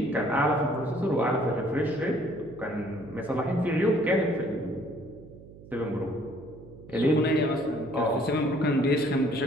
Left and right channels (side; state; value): right; noise; hum, 19 dB below the sound